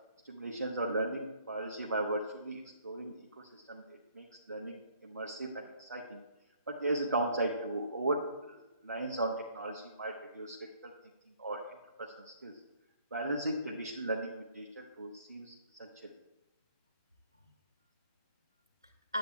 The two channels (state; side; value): inverted; both; correlation -0.61